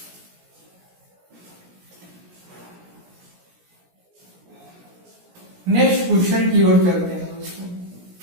नेक्स्ट क्वेश्चन की ओर चलते हैं दोस्तों।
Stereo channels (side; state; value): left; late; 17 ms